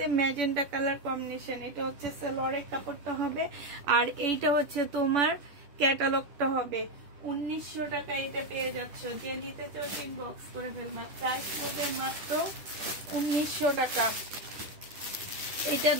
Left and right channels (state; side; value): late; left; 11 ms